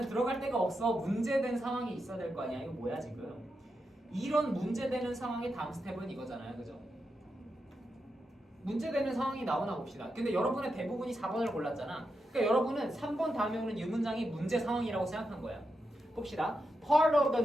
들어갈 데가 없어. 문제된 상황이 있어야 될 거 아니야. 이거 뭐야 지금? 이런 문제되는 상황의 다음 스텝은 이거잖아요. 그죠? 문제되는 상황이 나오나 봅시다. 근데 여러분의 대부분이 4번을 골랐잖아. 그러니까 여러분은 3번 다음에 오는 이 문장이 문제 상황이라고 생각한 거야. 봅시다. Part of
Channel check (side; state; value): both; normal; correlation 0.86